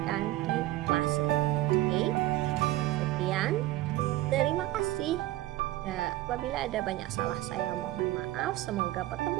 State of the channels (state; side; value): quieter; left; 16.3 dB